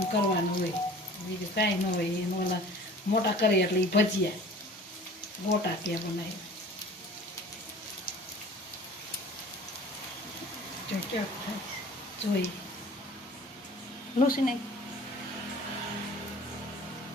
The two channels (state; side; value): normal; both; correlation 0.45